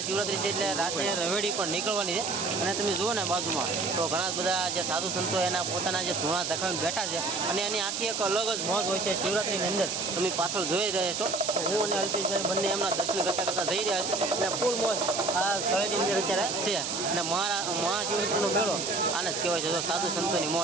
છે એટલે રાતે રવેડી પણ નીકળવાની છે. અને તમે જુઓ ને બાજુમાં તો ઘણા બધા જે સાધુ સંતો એના પોતાના જે ધૂણા ધખાવીને બેઠા છે અને એની આખી એક અલગ જ મોજ હોય છે શિવરાત્રીની અંદર. તમે પાછળ જોઈ રહ્યા છો હું અને અલ્પેશભાઈ બંને એમના દર્શન કરતા જઈ રહ્યા છે અને ફૂલ મોજ આ તળેટીની અંદર અત્યારે છે. અને મહાશિવરાત્રીનો મેળો આને જ કહેવાય છે. તો સાધુ સંતોની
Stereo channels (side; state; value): right; noise; hiss, 2 dB below the sound